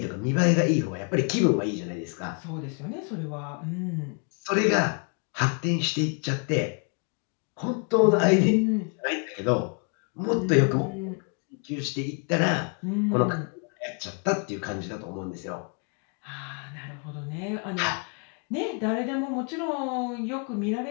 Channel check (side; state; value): right; quieter; 39.3 dB